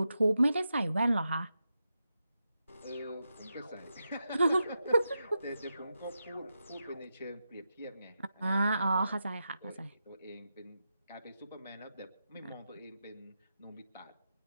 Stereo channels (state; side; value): inverted; both; correlation -0.88